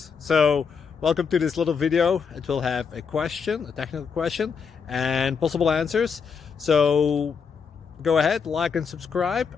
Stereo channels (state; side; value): quieter; right; 6.1 dB